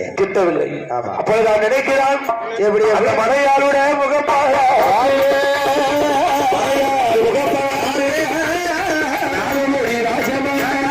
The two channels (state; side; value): identical; both; correlation 1.00